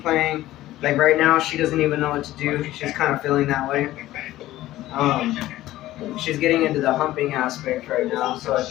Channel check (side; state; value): right; quieter; 15.3 dB